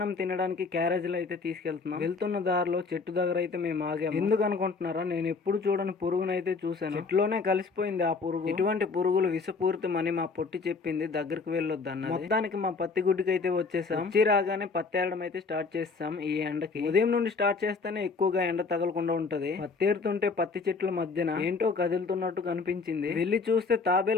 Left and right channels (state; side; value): quieter; right; 4.5 dB